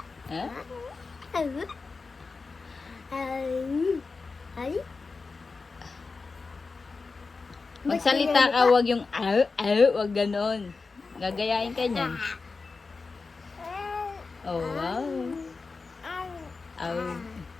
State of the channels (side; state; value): right; quieter; 4.3 dB